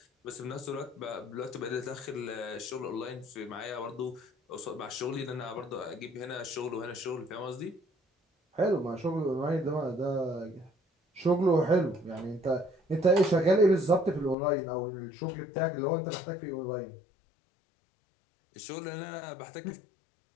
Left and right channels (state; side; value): drops out; right; at 14.4 s